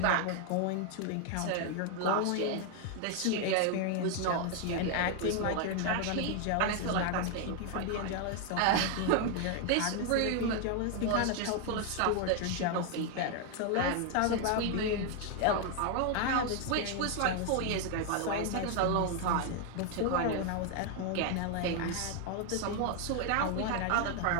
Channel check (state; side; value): different; both; correlation 0.01